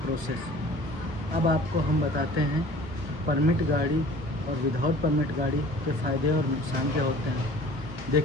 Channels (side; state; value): left; late; 1.1 ms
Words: अब आपको हम बताते हैं परमिट गाड़ी और विदाउट परमिट गाड़ी के फ़ायदे और नुकसान क्या होते हैं।